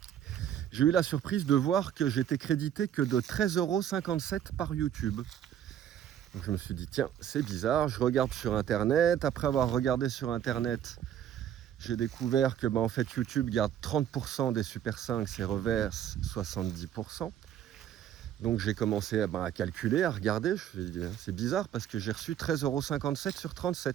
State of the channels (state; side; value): quieter; left; 10.2 dB